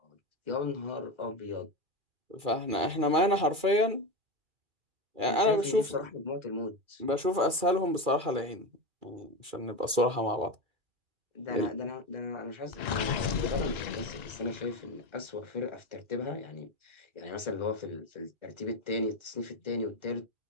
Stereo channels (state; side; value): late; left; 2.3 ms